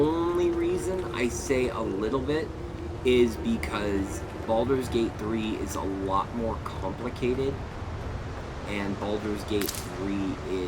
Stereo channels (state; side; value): identical; both; correlation 1.00